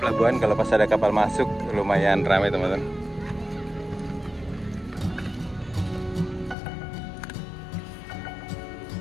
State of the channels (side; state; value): right; drops out; at 6.6 s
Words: Pelabuhan kalau pas ada kapal masuk lumayan ramai teman-teman.